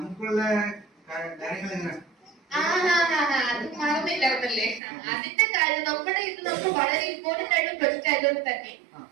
കാര്യങ്ങൾ എങ്ങനെ? അത് മറന്നില്ലായിരുന്നല്ലേ. അതിന്റെ കാര്യം നമ്മുടെ ഇത് നമുക്ക് വളരെ ഇമ്പോർട്ടന്റ് ആയിട്ടുള്ള പ്രൊജക്ട് ആയതുകൊണ്ട് തന്നെ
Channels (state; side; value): drops out; left; at 4.8 s